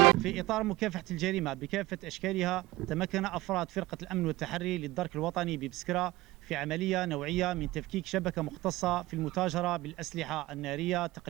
في إطار مكافحة الجريمة بكافة أشكالها، تمكن أفراد فرقة الأمن والتحري للدرك الوطني ببسكرة في عملية نوعية من تفكيك شبكة مختصة في المتاجرة بالأسلحة النارية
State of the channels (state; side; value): quieter; left; 18.9 dB